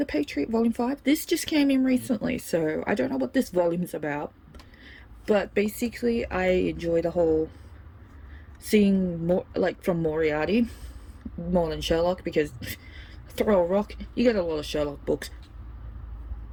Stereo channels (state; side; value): identical; both; correlation 1.00